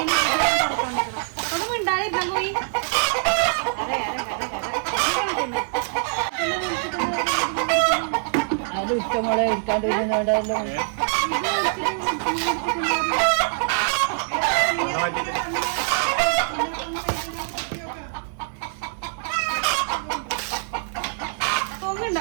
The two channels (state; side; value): silent; left; digital silence